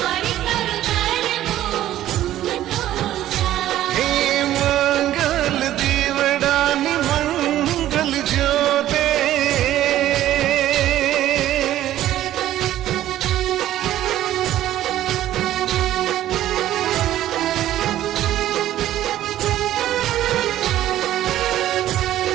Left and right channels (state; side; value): quieter; left; 13.2 dB